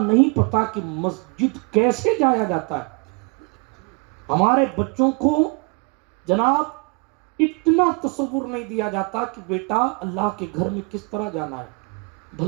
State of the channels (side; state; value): left; quieter; 33.1 dB